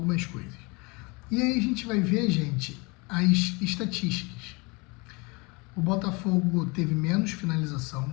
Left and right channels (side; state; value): right; quieter; 28.0 dB